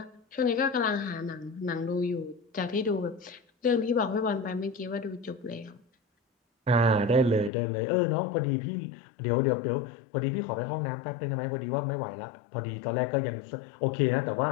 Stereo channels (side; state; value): right; drops out; at 7.5 s